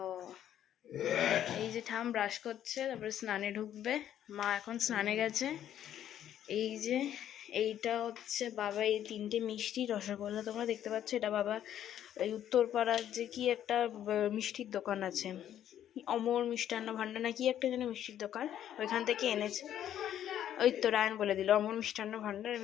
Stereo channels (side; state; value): right; quieter; 10.8 dB